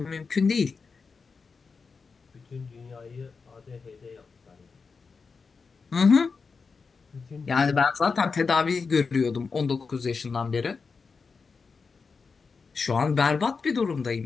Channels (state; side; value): quieter; right; 4.9 dB